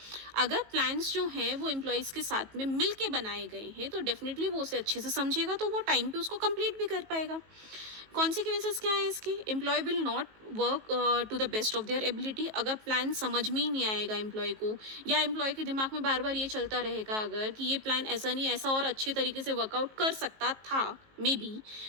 अगर प्लान्स जो हैं वो एम्प्लॉयज़ के साथ में मिल के बनाए गए हैं तो डेफिनेटली वो उसे अच्छे से समझेगा, तो वो टाइम पे उसको कंप्लीट भी कर पाएगा। कॉन्सिक्वेंसेस क्या है इसके? Employee will not work to the best of their ability. अगर प्लान समझ में ही नहीं आएगा एम्प्लॉय को, या एम्प्लॉय के दिमाग में बार बार ये चलता रहेगा अगर कि ये प्लान ऐसा नहीं, ऐसा और अच्छे तरीके से वर्कआउट कर सकता था मे बी,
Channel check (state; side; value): late; left; 19 ms